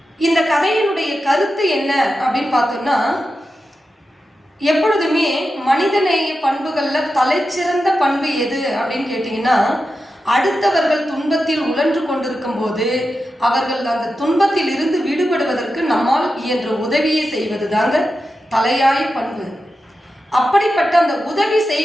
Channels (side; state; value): both; normal; correlation 0.90